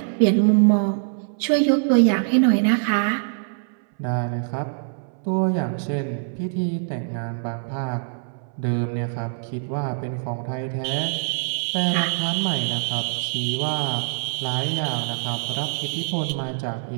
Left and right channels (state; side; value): silent; left; 63 dB below the other